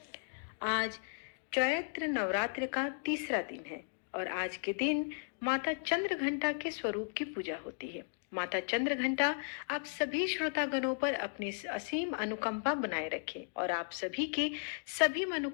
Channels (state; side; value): silent; right; digital silence